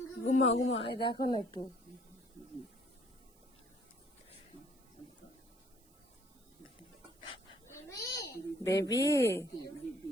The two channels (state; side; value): noise; right; hiss, 29 dB below the sound